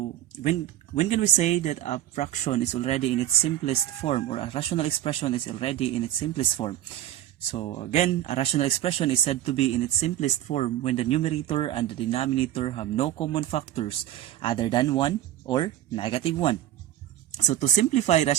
when can we say that a fraction is already in its simplest form, or a rational expression is already in its simplest form? So again, a rational expression is said to be in its simplest form when the numerator and the denominator have no common factors other than 1 or -1. So to simplify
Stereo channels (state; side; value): quieter; left; 12.5 dB